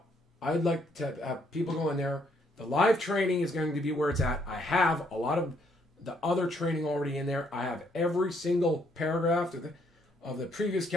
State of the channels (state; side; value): normal; both; correlation 0.70